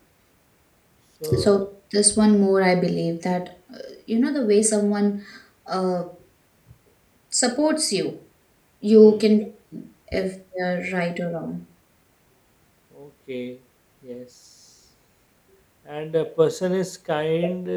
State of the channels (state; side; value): identical; both; correlation 1.00